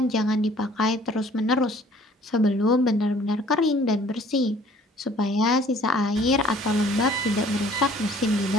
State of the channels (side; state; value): both; normal; correlation 0.55